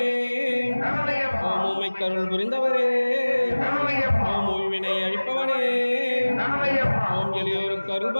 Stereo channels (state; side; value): inverted; both; correlation -1.00